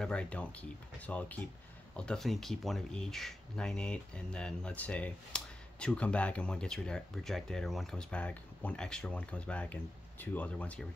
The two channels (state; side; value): normal; both; correlation 0.92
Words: don't keep. So I'll definitely keep one of each 9/8, and then let's say 2 come back and 1 gets rejected, or 1 comes back, 1 extra one comes back, and 2 other ones get